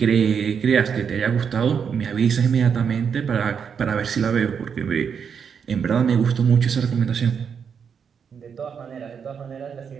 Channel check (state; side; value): quieter; left; 6.9 dB